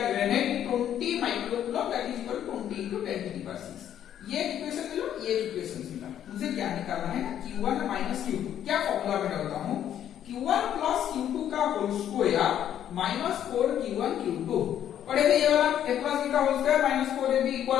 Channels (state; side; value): quieter; right; 10.4 dB